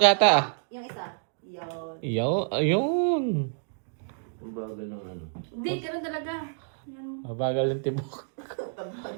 yata ah. Yung isa. Yun. Ayun. Ang bagal ng ano. Hindi, ganun talaga. Yan. Mabagal yung tibok.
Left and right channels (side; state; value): left; silent; digital silence